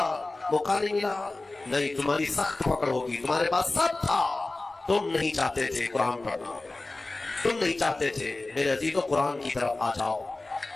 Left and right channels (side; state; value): right; quieter; 3.0 dB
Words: موقع نہیں ملا؟ نہیں، تمہاری سخت پکڑ ہوگی، تمہارے پاس سب تھا، تم نہیں چاہتے تھے قرآن پڑھنا، تم نہیں چاہتے تھے۔ میرے عزیزو، قرآن کی طرف آ جاؤ۔